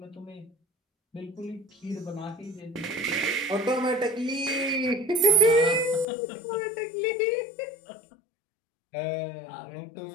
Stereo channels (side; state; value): right; drops out; at 6.1 s